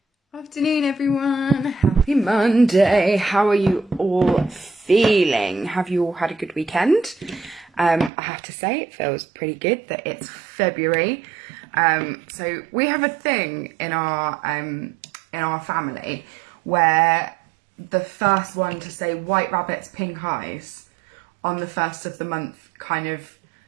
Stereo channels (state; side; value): drops out; left; at 8.1 s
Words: Afternoon, everyone. Happy Monday. How are you all feeling? Have you all had a good weekend? I have to say it feels pretty good that it's February. So we have a thing in our family where the first one to say white rabbits, pink eyes on the first of the month kind of